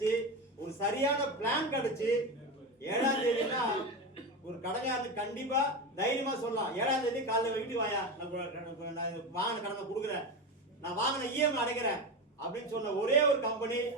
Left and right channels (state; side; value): normal; both; correlation 0.20